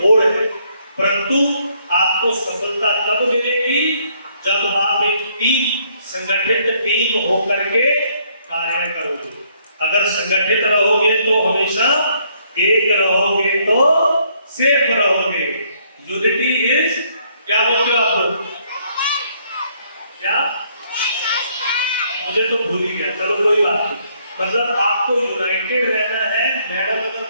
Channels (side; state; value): both; inverted; correlation -0.68